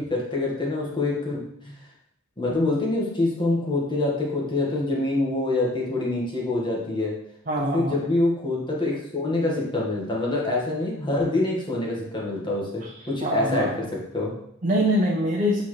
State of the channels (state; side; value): normal; both; correlation 0.50